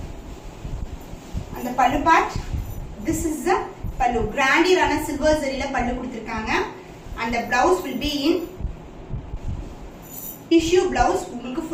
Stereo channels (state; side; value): identical; both; correlation 1.00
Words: அந்த பல்லு part, this is the pallu, grandier silver zarila pallu kuduthirukanga and the blouse will be in tissue blouse. உங்களுக்கு